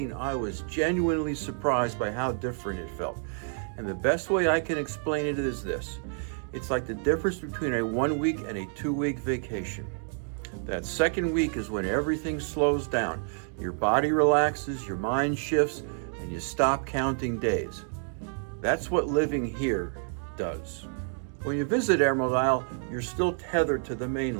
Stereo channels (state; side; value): silent; left; 56 dB below the other